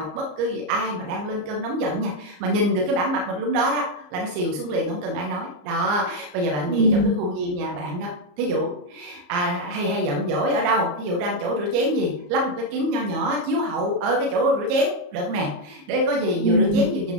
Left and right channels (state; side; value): late; left; 34 ms